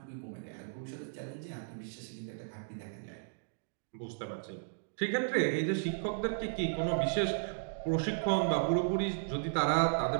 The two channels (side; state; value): left; silent; digital silence